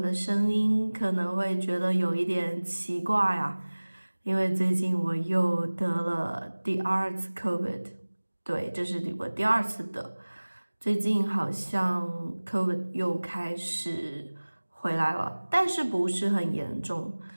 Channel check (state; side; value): inverted; both; correlation -1.00